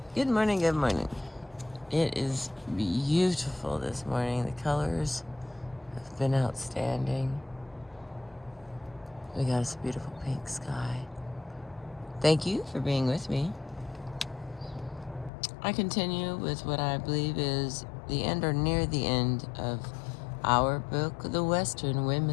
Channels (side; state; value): right; drops out; at 15.3 s